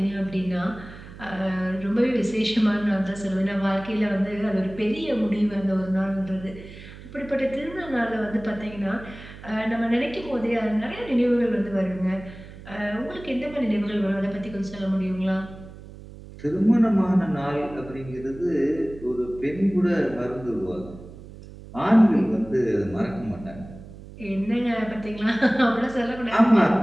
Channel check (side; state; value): right; noise; hum, 16 dB below the sound